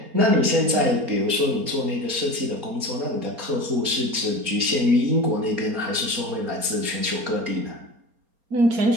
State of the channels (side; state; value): left; late; 4.3 ms